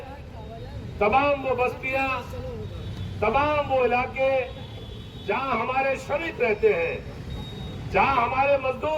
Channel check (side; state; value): both; identical; correlation 1.00